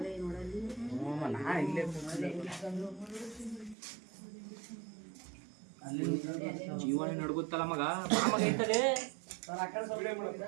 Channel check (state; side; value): drops out; left; at 3.8 s